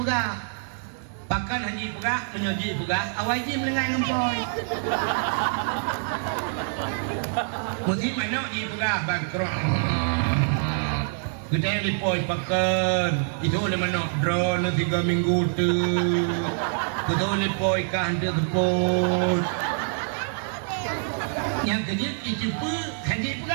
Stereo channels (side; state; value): left; silent; digital silence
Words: Bahkan haji pegah, menyoji pegah, awal haji melengai ngampoi. Mesti mana haji pegah, bangkrut. Kita yang lipoi pakan. Itu oleh mana drone 3 minggu tu. Kita lipoi kah dia tepun. Yang kedua, itu pun haji